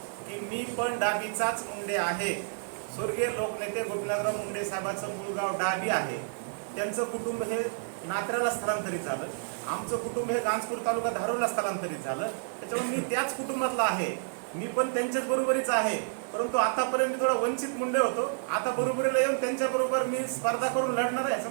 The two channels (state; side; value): silent; left; digital silence